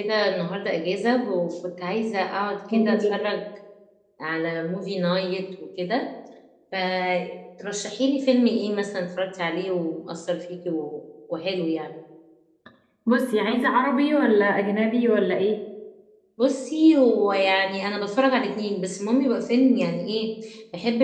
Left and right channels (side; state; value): both; identical; correlation 1.00